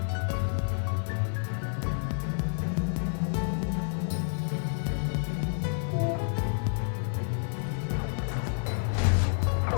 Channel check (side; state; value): right; silent; 58 dB below the other